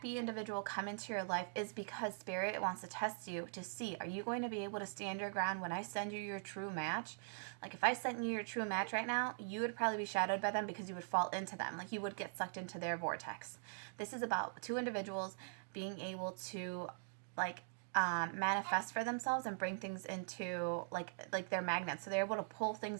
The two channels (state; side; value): silent; left; digital silence